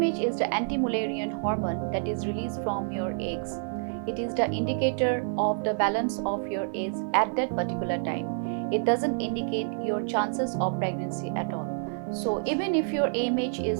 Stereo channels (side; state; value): left; silent; 59 dB below the other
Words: is the anti-Mullerian hormone that is released from your eggs. It is the indicator of the balance of your eggs at that particular time. It doesn't indicate your chances of pregnancy at all. So even if your AMH